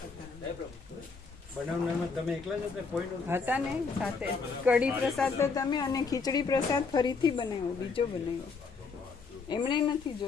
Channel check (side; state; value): right; quieter; 4.8 dB